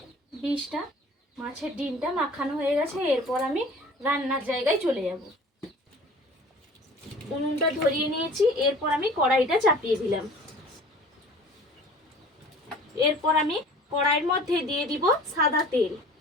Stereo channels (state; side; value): normal; both; correlation 0.46